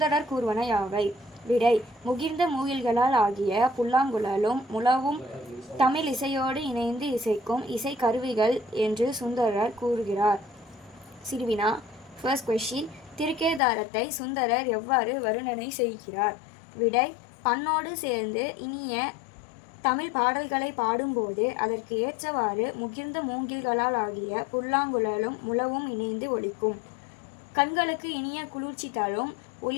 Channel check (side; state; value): right; drops out; at 13.6 s